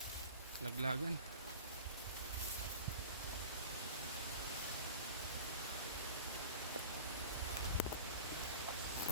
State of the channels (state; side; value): inverted; both; correlation -0.38